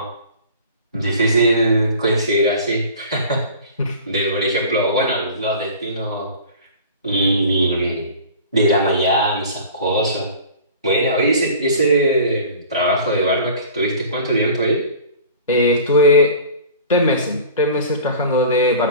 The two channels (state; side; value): inverted; both; correlation -0.42